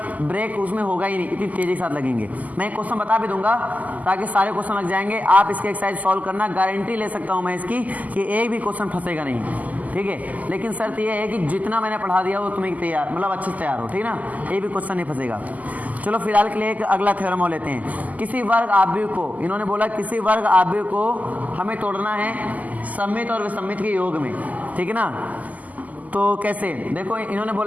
ब्रेक उसमें होगा ही नहीं, इतनी तेजी के साथ लगेंगे। मैं क्वेश्चन बता भी दूंगा ताकि सारे क्वेश्चन लग जाएंगे। आप इसके एक्सरसाइज सॉल्व करना, गारंटी ले सकता हूँ मैं इसकी कि एक भी क्वेश्चन फंसेगा नहीं, ठीक है। लेकिन शर्त यह है कि जितना मैंने पढ़ा दिया वो तुम्हें तैयार, मतलब अच्छे से तैयार हो, ठीक ना, एक भी क्वेश्चन नहीं फंसेगा। चलो फिलहाल के लिए एक अगला थ्योरम हो लेते हैं। किसी वर्ग आव्यूह को, इन्होंने बोला किसी वर्ग आव्यूह को हमें तोड़ना है सममित और विसम्मित के योग में, ठीक है ना। तो कैसे, देखो इन्होंने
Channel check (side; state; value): left; late; 0.078 ms